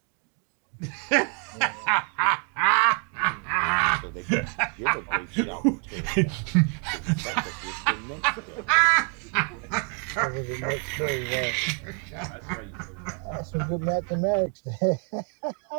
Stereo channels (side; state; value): left; quieter; 37.9 dB